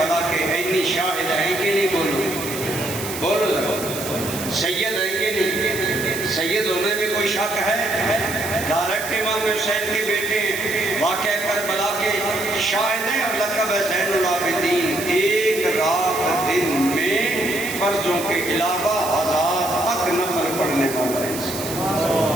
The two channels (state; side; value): noise; right; hiss, 9 dB below the sound